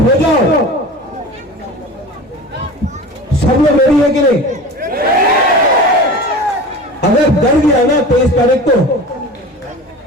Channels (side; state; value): both; normal; correlation 0.34